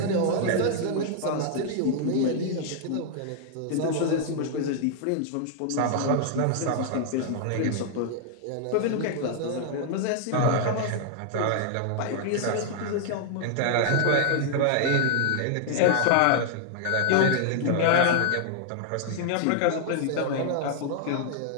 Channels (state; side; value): different; both; correlation 0.00